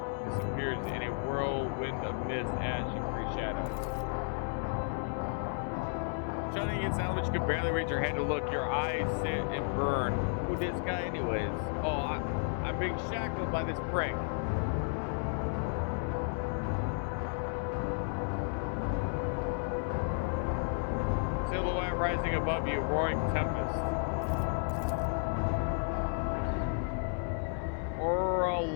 disappears in a whirlwind of mist, ash, and free shadows. Shouting against Salvage, you can barely raise your head to look. Your eyes sit and burn. Who this guy anyways? Oh, I'm being shackled by this prick. Silhouette rising above you, roaring tempest.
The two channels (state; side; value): silent; right; 56 dB below the other